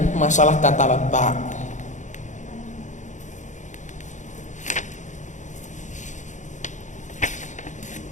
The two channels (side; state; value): right; late; 0.35 ms